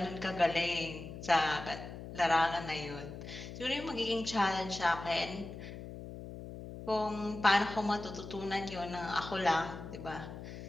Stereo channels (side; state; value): left; noise; hum, 11 dB below the sound